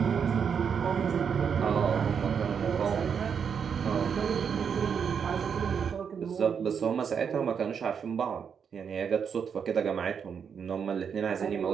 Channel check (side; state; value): left; quieter; 7.0 dB